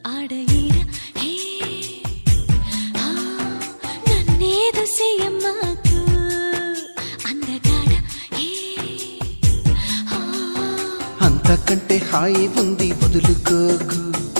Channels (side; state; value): both; inverted; correlation -1.00